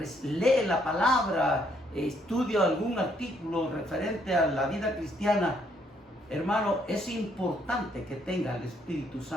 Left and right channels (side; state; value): both; normal; correlation 0.70